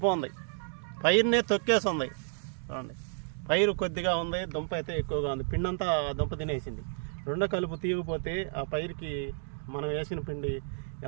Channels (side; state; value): left; silent; digital silence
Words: పైరునే తొక్కేస్తుంది. చూడండి, పైరు కొద్దిగా ఉంది, దుంప అయితే ఎక్కువగా ఉంది. పిండి అంతా దుంప తినేసింది. రెండో కలుపు తీయకపోతే ఆ పైరుకి మనం వేసిన పిండి